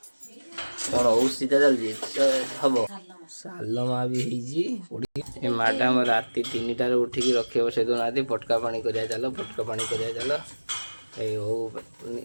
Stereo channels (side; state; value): both; inverted; correlation -1.00